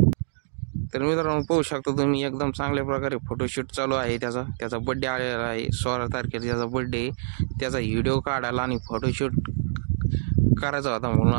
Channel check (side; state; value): left; silent; digital silence